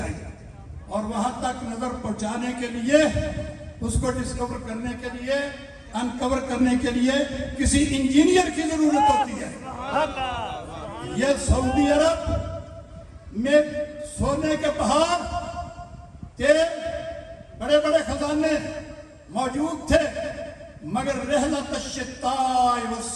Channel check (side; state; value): both; identical; correlation 1.00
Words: گے۔ اور وہاں تک نظر پہنچانے کے لیے، اس کو ڈسکور کرنے کے لیے، انکور کرنے کے لیے کسی انجینئر کی ضرورت ہوتی ہے۔ یہ سعودی عرب میں سونے کے پہاڑ تھے، بڑے بڑے خزانے موجود تھے، مگر رحلت الشتاء